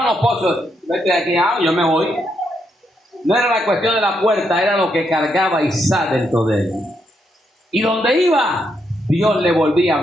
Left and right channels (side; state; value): both; normal; correlation 0.79